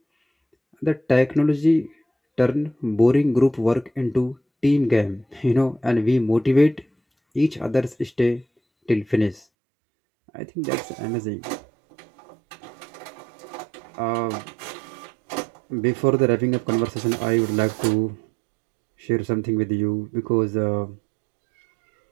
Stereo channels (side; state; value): left; drops out; at 9.5 s